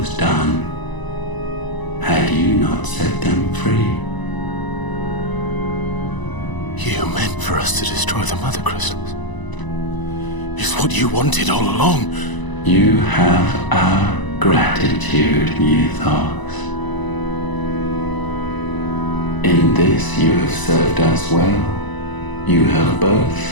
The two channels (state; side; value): late; right; 1.0 ms